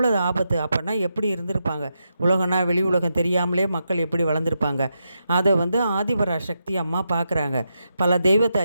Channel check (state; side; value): inverted; both; correlation -0.85